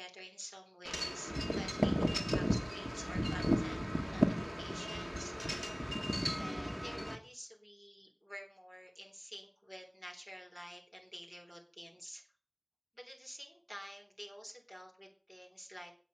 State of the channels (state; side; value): identical; both; correlation 1.00